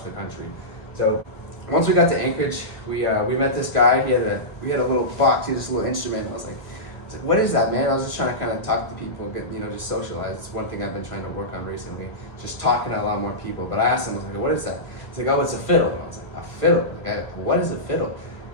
the country. So once we got to Anchorage, we met this guy. We had a little box, he had this little instrument. I was like, what is that, man? I was just trying to kind of talk to people, get, you know, just socialize. It's one thing I've been trying to work on recently, just talking to a lot more people. But I asked him, I was like, what is that? He's like, oh, it's a fiddle. And I was like, a fiddle? Like, what is a fiddle?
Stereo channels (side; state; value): right; late; 1.3 ms